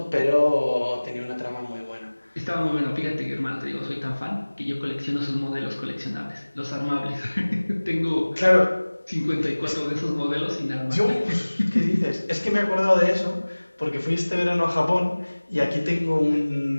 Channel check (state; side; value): inverted; both; correlation -1.00